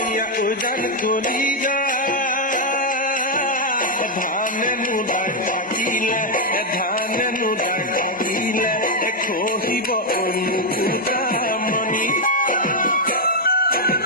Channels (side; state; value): both; normal; correlation 0.00